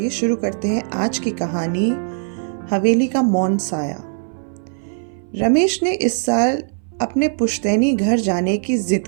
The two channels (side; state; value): left; silent; 61 dB below the other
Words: शुरू करते हैं आज की कहानी, हवेली का मौन साया। रमेश ने इस साल अपने पुश्तैनी घर जाने की जिद